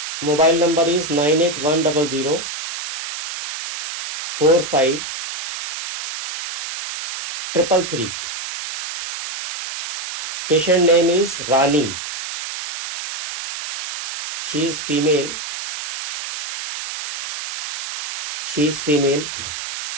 Mobile number is 98100 45 333. Patient name is Rani. She is female.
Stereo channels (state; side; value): noise; right; hiss, 8 dB below the sound